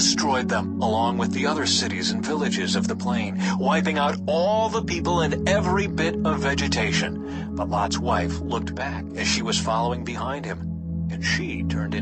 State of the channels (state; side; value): identical; both; correlation 1.00